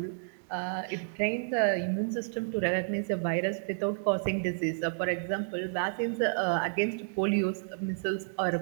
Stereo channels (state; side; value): silent; left; digital silence